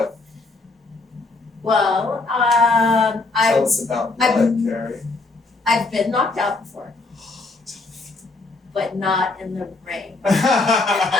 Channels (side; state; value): right; quieter; 3.5 dB